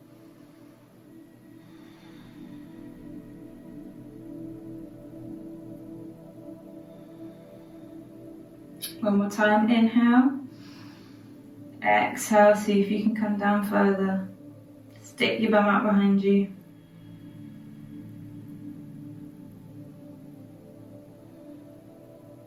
One more time, inhale. Exhale, see if you can come down further. Stick your bum out behind you.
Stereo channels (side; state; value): both; identical; correlation 1.00